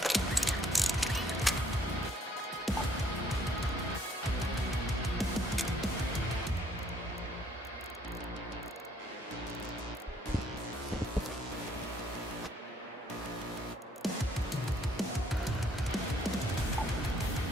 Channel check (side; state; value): both; normal; correlation 0.65